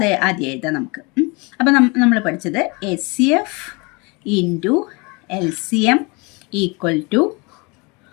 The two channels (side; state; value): right; quieter; 28.5 dB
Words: ആദ്യം എഴുതാം നമുക്ക്. അപ്പോൾ നമ്മൾ പഠിച്ചത് HCF into LCM equal to